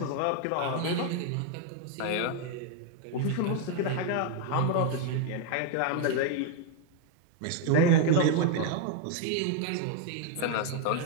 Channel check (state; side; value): different; both; correlation 0.00